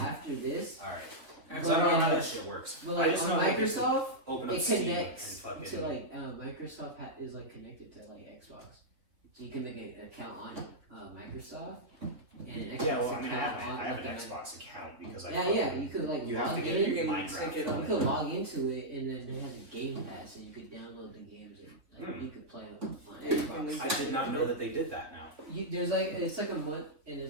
this. All right. But, Because I don't know how that shit works. But I like just on know like, if you Microsoft, open up it Steam connects and fucking. to like Microsoft is like connected to like Xbox, so you can make an account on Microsoft and an Xbox Yeah, well, I mean, I account have, on I have like an a- Xbox account because I. Yeah, you could like You have log to in. get You can Minecraft. sync it You on. could log into it, and then it has a Game Pass, and you could download the games, and like, you could play them on Yeah, you can Xbox. link I did not know that they did that now. There's like it's like a month, and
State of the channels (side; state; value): left; late; 3.8 ms